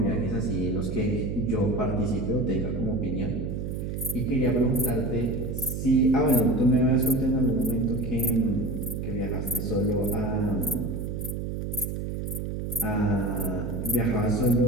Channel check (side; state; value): right; noise; hum, 4 dB below the sound